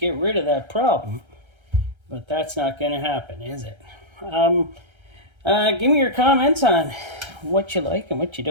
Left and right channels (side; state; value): left; late; 1.3 ms